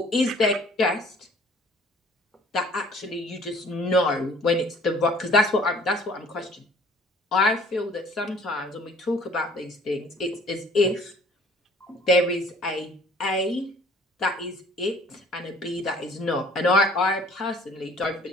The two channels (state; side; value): normal; both; correlation 0.54